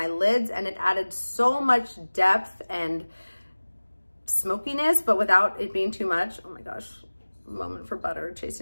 lids, and it added so much depth and smokiness, but without it being too much. Oh my gosh, moment for Butter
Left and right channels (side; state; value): both; inverted; correlation -1.00